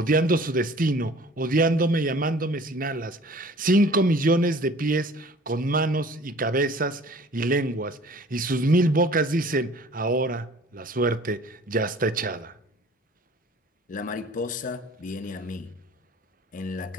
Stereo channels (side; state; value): both; normal; correlation 0.49